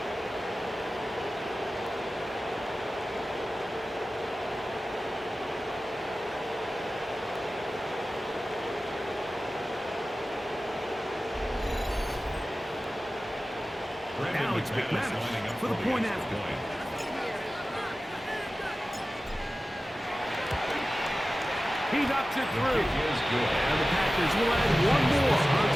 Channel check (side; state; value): both; normal; correlation 0.95